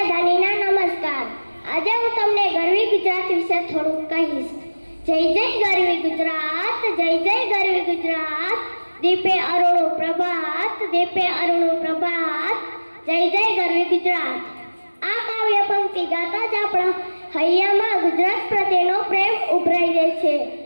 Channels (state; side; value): inverted; both; correlation -1.00